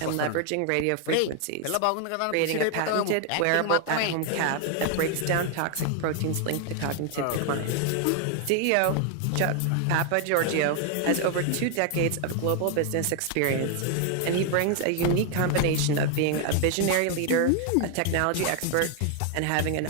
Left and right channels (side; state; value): both; different; correlation 0.00